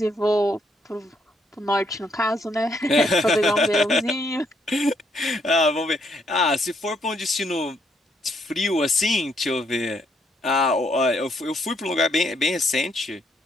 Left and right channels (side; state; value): both; normal; correlation 0.73